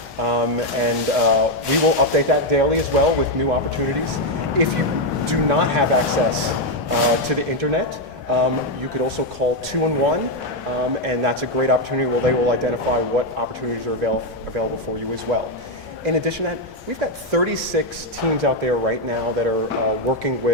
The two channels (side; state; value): both; normal; correlation 0.03